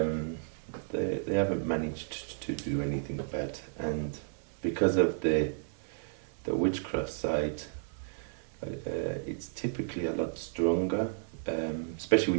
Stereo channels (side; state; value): left; silent; 56 dB below the other